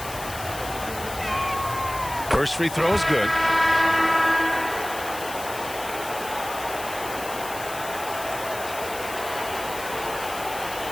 First free throw is good.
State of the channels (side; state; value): left; noise; hiss, 11 dB below the sound